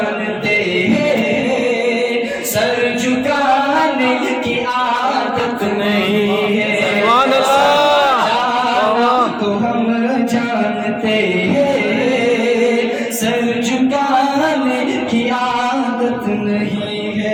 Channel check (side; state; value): both; identical; correlation 1.00